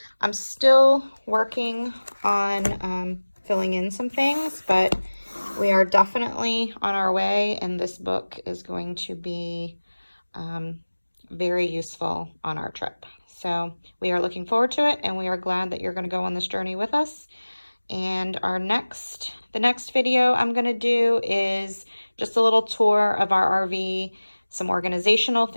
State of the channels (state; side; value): inverted; both; correlation -1.00